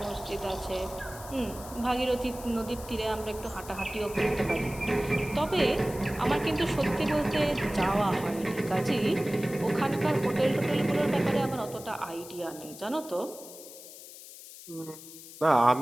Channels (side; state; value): left; noise; hiss, 16 dB below the sound